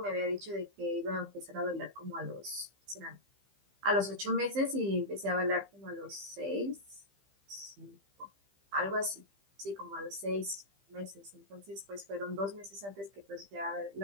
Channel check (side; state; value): left; late; 15 ms